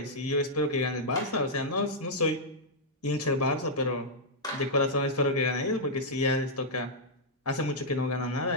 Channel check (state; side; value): normal; both; correlation -0.07